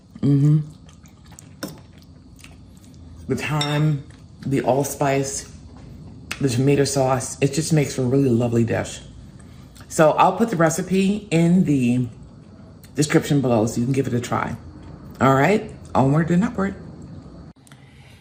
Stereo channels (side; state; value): both; identical; correlation 1.00